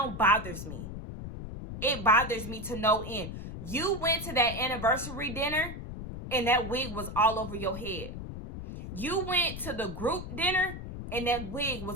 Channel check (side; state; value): left; noise; rumble, 8 dB below the sound